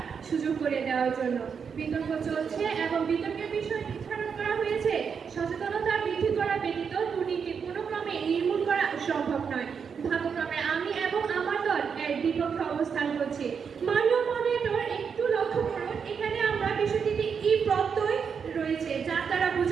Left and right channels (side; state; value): left; quieter; 6.5 dB